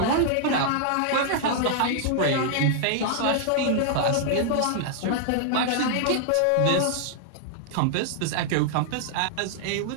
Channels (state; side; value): different; both; correlation -0.01